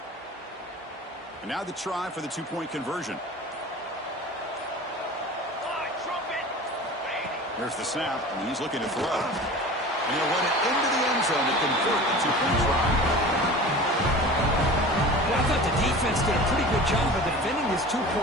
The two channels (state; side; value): normal; both; correlation 0.37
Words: And now the try for the two-point conversion. There's the snap, and he's looking to throw. And he'll run it into the end zone to convert the two-point try. Well, I thought the defense did a pretty good job of defending this